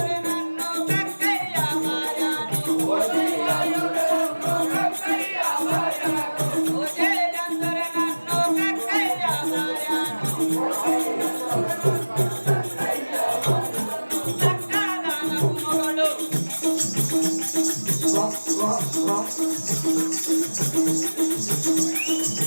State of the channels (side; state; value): both; inverted; correlation -1.00